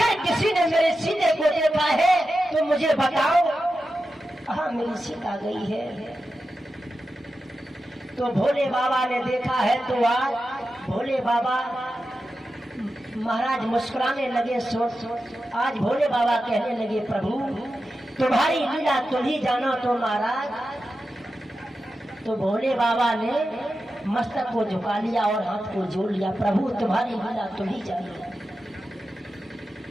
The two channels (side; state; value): both; normal; correlation 0.91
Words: किसी ने मेरे सीते को देखा है तो मुझे बताओ। हाँ, मेरी सीता गई है। तो भोले बाबा ने देखा है तो आज भोले बाबा महाराज मुस्कुराने लगे। आज भोले बाबा कहने लगे, प्रभु तुम्हारी लीला तुम ही जानो तो महाराज। तो भोले बाबा ने मस्तक को झुका लिया और हाथ को जोड़ लिया, प्रभु तुम्हारी लीला तुम ही जानो।